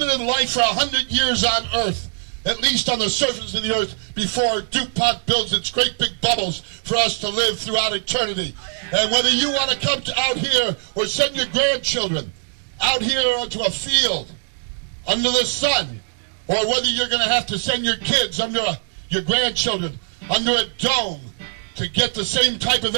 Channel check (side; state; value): left; silent; 65 dB below the other